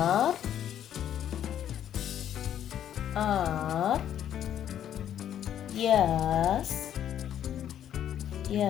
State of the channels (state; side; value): quieter; right; 10.3 dB